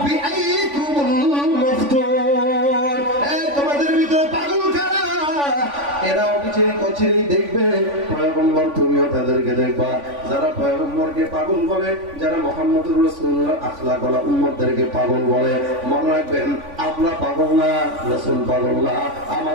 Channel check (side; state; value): left; late; 3.5 ms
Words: বিআইকুমুল মাফতুন, তোমাদের ভিতরে পাগল কারা, এরা অবিচেই কচিরেই দেখবে পয়গম্বর, তুমিও তাদেরকে দেখবা। যারা পয়গম্বরকে পাগল বলে, যারা মুহাম্মদুর রাসূলুল্লাহ আখলাকওয়ালা উম্মতদেরকে পাগল বলে, মনে রাখবেন আমরা পাগল না, রাসূল পাগল না।